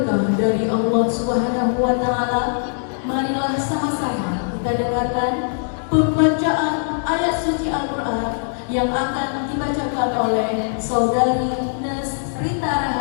dari Allah Subhanahu wa Ta'ala, marilah sama-sama kita dengarkan pembacaan ayat suci Al-Quran yang akan dibacakan oleh Saudari Rita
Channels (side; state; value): right; silent; digital silence